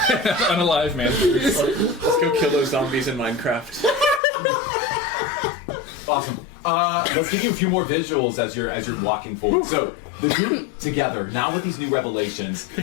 Unalive, man. Let's go kill those zombies in Minecraft. Awesome. Let's give you a few more visuals as you're walking forward. So the group together now with these new revelations.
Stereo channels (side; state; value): right; drops out; at 4.2 s